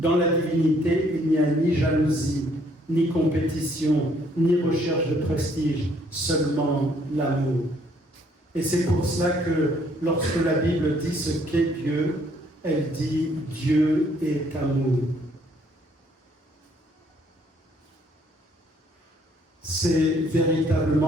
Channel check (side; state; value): both; normal; correlation 0.65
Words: la divinité, il n'y a ni jalousie, ni compétition, ni recherche de prestige, seulement l'amour. Et c'est pour cela que lorsque la Bible dit ce qu'est Dieu, elle dit « Dieu est amour ». C'est